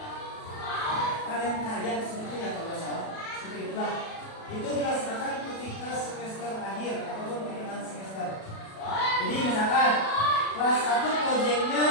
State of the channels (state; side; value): late; right; 37 ms